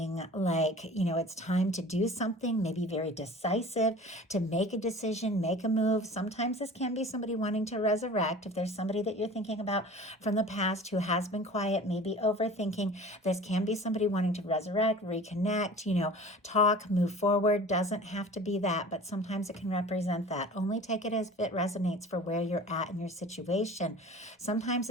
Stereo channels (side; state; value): both; normal; correlation 0.41